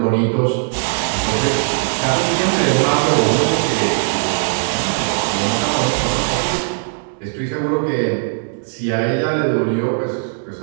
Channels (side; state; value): left; silent; digital silence